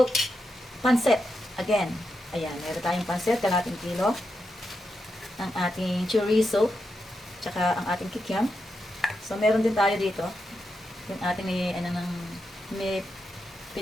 pansit again. Ayan, meron tayong pansit, kalating kilo. Ang ating chorizo, tsaka ang ating kikiam. So, meron din tayo dito. Yung ating may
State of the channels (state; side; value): normal; both; correlation 0.86